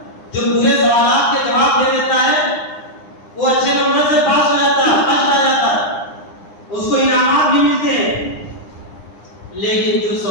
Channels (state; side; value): late; right; 9.8 ms